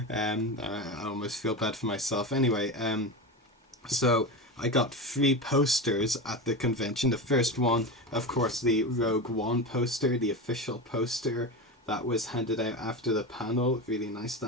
I almost feel bad for myself. Anyway, so I got 3 posters at the convention. The first one, of course, the Rogue One poster, the official poster that was handed out after the panel. Really nice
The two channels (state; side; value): normal; both; correlation 0.22